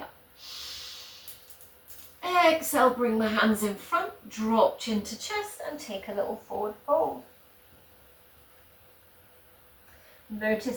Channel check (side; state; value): both; identical; correlation 1.00